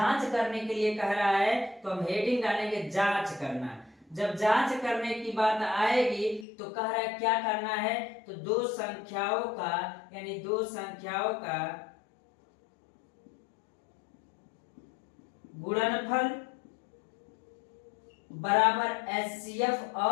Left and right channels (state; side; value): drops out; right; at 6.5 s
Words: करने के लिए कह रहा है, तो हम हेडिंग डालेंगे जांच करना। जब जांच करने की बात आएगी तो कह रहा है क्या करना है, तो दो संख्याओं का यानी दो संख्याओं का गुणनफल बराबर एचसीएफ